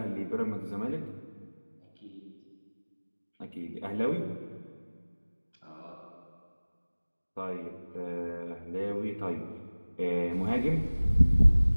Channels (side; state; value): both; inverted; correlation -1.00